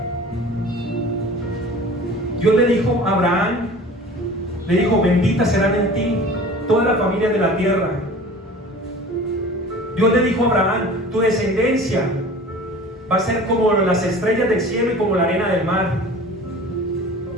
Dios le dijo a Abraham, le dijo: bendita serán en ti toda la familia de la tierra. Dios le dijo a Abraham: tu descendencia va a ser como las estrellas del cielo y como la arena del mar.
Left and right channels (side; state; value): both; normal; correlation 0.41